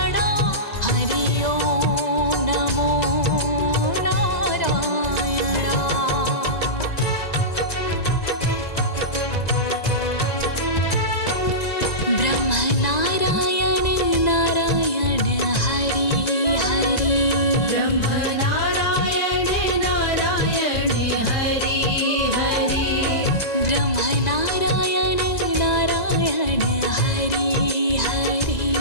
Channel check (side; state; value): right; late; 1.9 ms